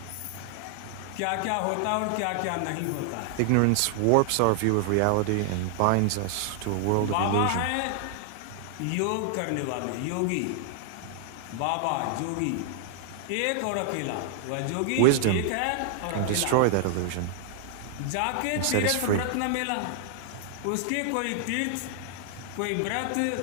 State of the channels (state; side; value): different; both; correlation 0.00